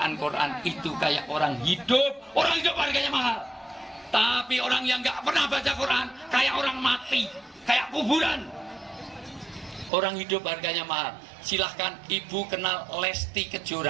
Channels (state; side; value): drops out; left; at 9.9 s